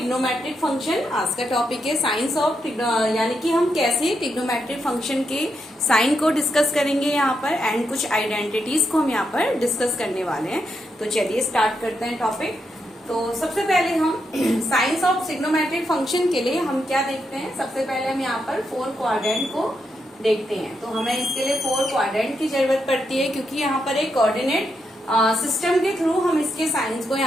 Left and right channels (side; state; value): both; normal; correlation 0.83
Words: function. आज का topic है science of यानी कि हम कैसे trigonometric function के sign को discuss करेंगे यहाँ पर एंड कुछ आइडेंटिटीज को हम यहाँ पर डिस्कस करने वाले हैं. तो चलिए स्टार्ट करते हैं टॉपिक. तो सबसे पहले हम साइंस ऑफ ट्रिग्नोमेट्रिक फंक्शन के लिए हम क्या देखते हैं. सबसे पहले हम यहाँ पर 4 क्वाड्रेंट को देखते हैं. तो हमें इसके लिए 4 क्वाड्रेंट की जरूरत पड़ती है क्योंकि यहाँ पर एक कोऑर्डिनेट सिस्टम के थ्रू हम इसके साइंस को